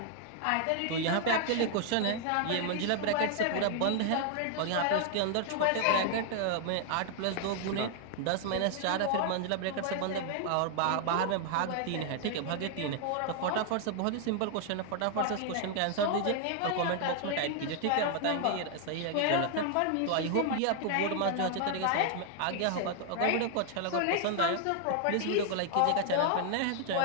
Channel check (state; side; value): different; both; correlation 0.00